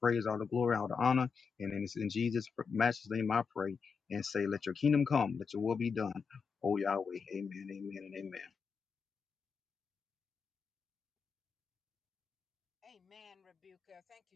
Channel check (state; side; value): quieter; right; 5.6 dB